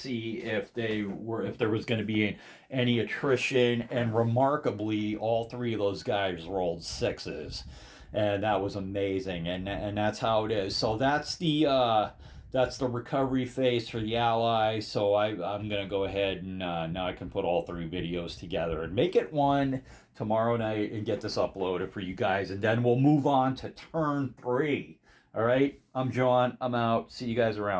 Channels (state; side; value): identical; both; correlation 1.00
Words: if there was going to be any attrition, and remarkably, all 3 of those guys rolled 6s, and that was amazing. And that's how it is. So that's the recovery phase for the Allies. So I'm going to go ahead and now I can put all 3 videos together and make it one tomorrow night and get this uploaded for you guys. And then we'll move on to turn 3. All right, I'm John. I'm out. See you guys